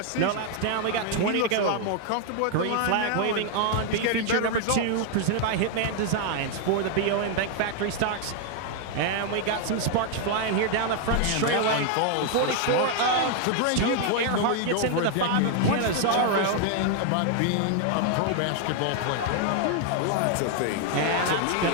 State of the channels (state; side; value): different; both; correlation 0.00